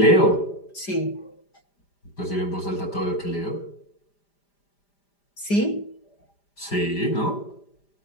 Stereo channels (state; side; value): late; right; 5.0 ms